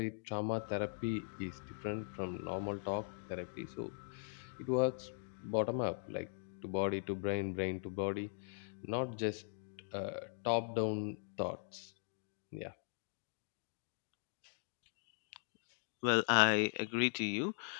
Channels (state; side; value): silent; right; digital silence